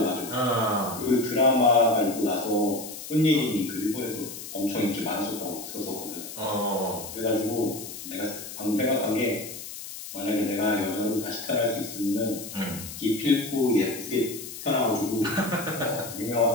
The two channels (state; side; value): noise; left; hiss, 11 dB below the sound